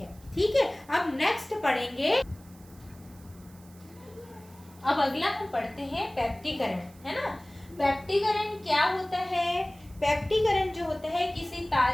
ठीक है, अब नेक्स्ट पढ़ेंगे, अब अगला हम पढ़ते हैं पेप्टिकरण, है ना। पेप्टिकरण क्या होता है, पेप्टिकरण जो होता है किसी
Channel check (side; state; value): right; noise; hiss, 26 dB below the sound